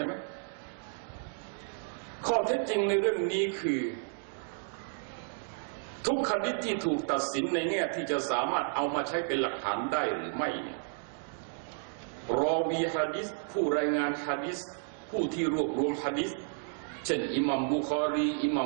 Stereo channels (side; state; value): left; silent; digital silence